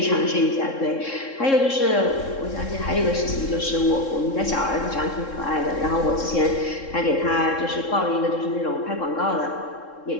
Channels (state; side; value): late; right; 3.7 ms